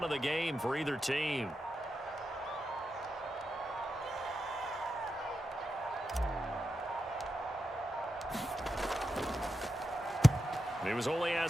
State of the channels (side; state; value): both; normal; correlation 0.88